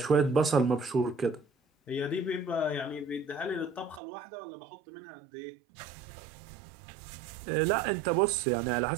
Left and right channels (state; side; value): drops out; left; at 4.0 s